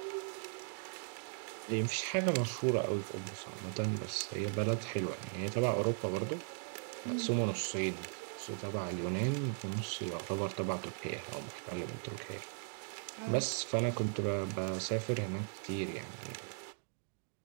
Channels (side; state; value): left; silent; 52 dB below the other